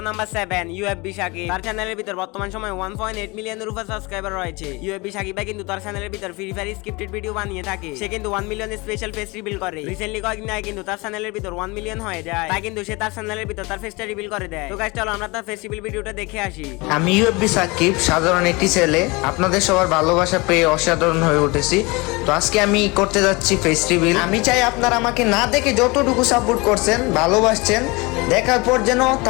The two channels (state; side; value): quieter; right; 25.3 dB